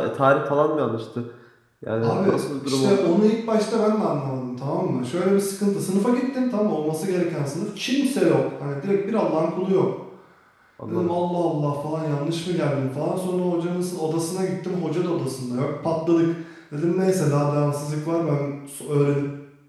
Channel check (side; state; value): both; identical; correlation 1.00